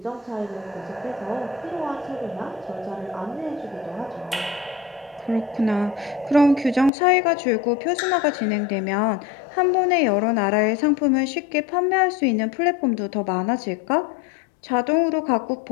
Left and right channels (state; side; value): drops out; right; at 6.9 s